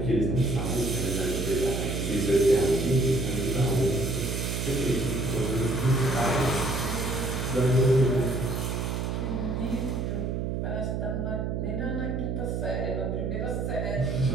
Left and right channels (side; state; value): right; noise; hum, 1 dB below the sound